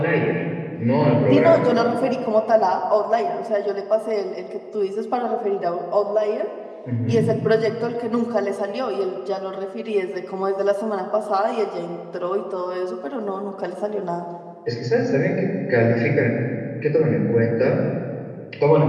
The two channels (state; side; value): identical; both; correlation 1.00